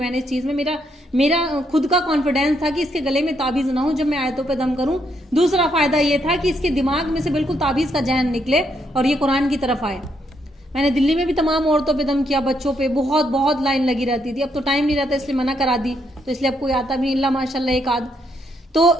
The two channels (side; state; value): both; normal; correlation 0.76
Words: نے اس چیز میں، میرا خود کا کانفیڈینس تھا کہ اس کے گلے میں تعویذ نہ ہو جب میں آیتوں پہ دم کروں. دوسرا فائدہ یہ تھا کہ اس کے دماغ میں سے بالکل تعویذ کا ذہن نکلے اور یہ قرآن کی طرف آئے. میں نے دلی میں بھی تمام عورتوں پہ دم کیا، بچوں پہ بہت لائن لگی رہتی تھی. اب تو ٹائم نہیں رہتا اس لیے منع کرا دی، تو اس لیے اب کوئی آتا بھی نہیں، اللہ ماشاء اللہ ایک آدھ. تو